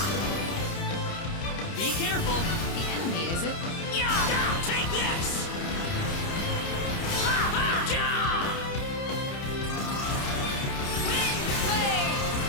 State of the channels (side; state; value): right; late; 30 ms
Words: Be careful. The enemy, is it? Take this!